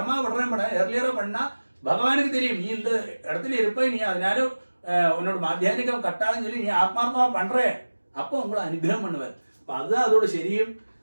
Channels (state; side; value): inverted; both; correlation -1.00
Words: വിടണം ഇവിടെ ഏർലിയറോ പണ്ണ ഭഗവാനുക്ക് தெரியும். நீ இந்த இடத்துல இருப்ப, நீ அதனால உன்னோட மாத்தியானிகம் கட்டாதுன்னு சொல்லி நீ ஆத்மார்த்தமா பண்றே. அப்போ உங்களை അനുഗ്രഹം பண்ணுவார். അപ്പൊ അത് അതോട് ശരിയും.